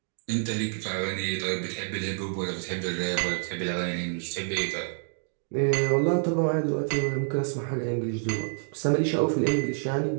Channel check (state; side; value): silent; left; digital silence